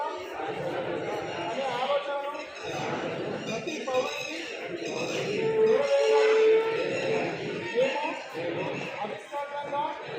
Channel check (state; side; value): identical; both; correlation 1.00